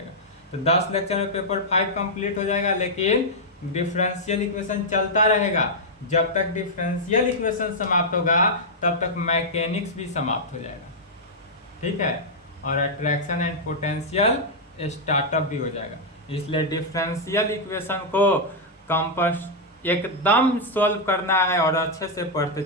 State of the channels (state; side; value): normal; both; correlation -0.05